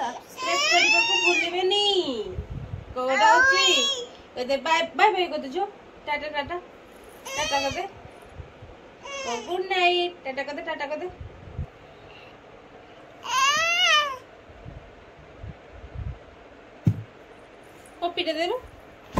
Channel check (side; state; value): both; identical; correlation 1.00